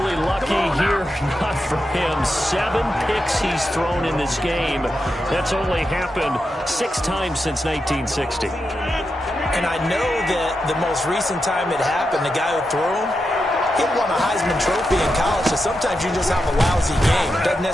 lucky here. Not for him. 7 picks he's thrown in this game. That's only happened 6 times since 1960. And I know that the most recent time it happened, the guy who threw him, he won a Heisman Trophy in college, so sometimes you just have a lousy game. It doesn't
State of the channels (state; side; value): normal; both; correlation 0.87